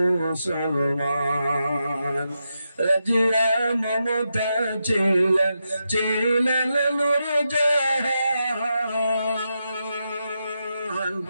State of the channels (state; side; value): inverted; both; correlation -0.86